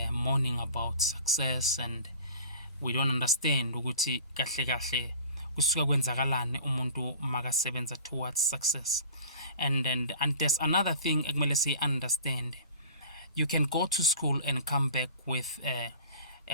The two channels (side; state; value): both; inverted; correlation -0.42